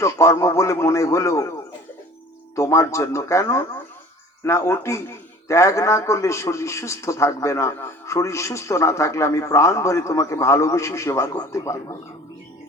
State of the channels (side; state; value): both; normal; correlation 0.46